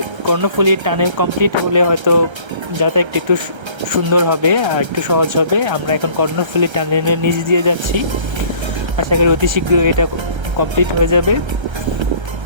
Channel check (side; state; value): left; late; 1.3 ms